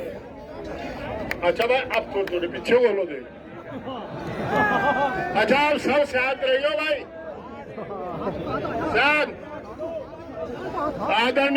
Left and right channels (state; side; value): identical; both; correlation 1.00